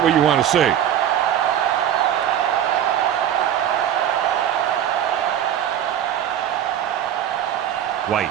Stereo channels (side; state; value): left; quieter; 10.3 dB